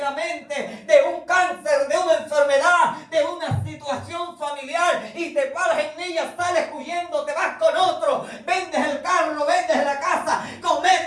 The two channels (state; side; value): identical; both; correlation 1.00